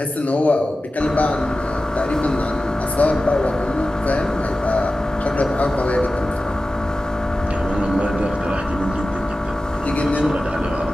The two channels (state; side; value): normal; both; correlation 0.95